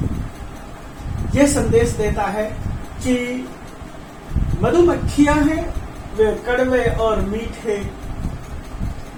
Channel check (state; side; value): identical; both; correlation 1.00